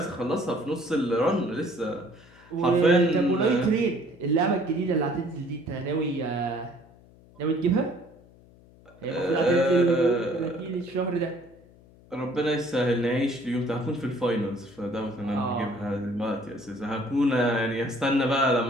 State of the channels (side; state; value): left; noise; hum, 25 dB below the sound